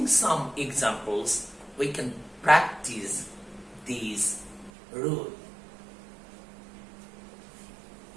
some examples, we can practice these rules.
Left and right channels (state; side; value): drops out; left; at 4.7 s